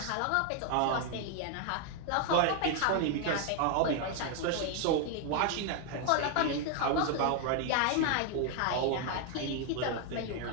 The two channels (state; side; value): different; both; correlation 0.00